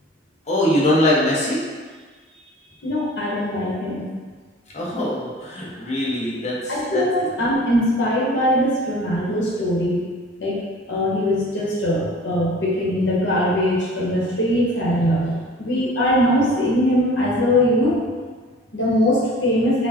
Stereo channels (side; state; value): both; normal; correlation 0.45